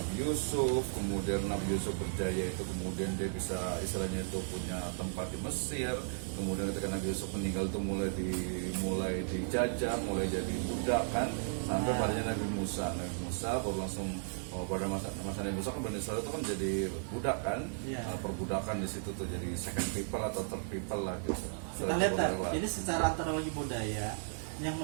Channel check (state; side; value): silent; left; digital silence